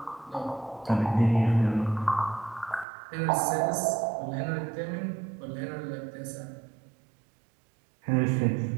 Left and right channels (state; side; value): drops out; left; at 2.9 s